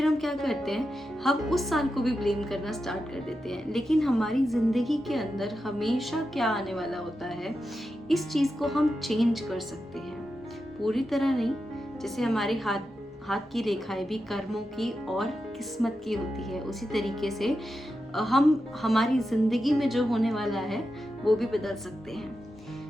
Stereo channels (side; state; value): both; normal; correlation 0.89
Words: हम क्या करते हैं, हम उस साल को भी ब्लेम करना स्टार्ट कर देते हैं। लेकिन हमारी ज़िंदगी के अंदर हमेशा क्या आने वाला होता है, इस चीज़ को हम चेंज कर सकते हैं। पूरी तरह नहीं, जैसे हमारे हाथ की रेखाएं भी कर्मों की और किस्मत की होती है, उसी तरीके से हम हमारी ज़िंदगी में जो होने वाला है वो भी बदल सकते हैं।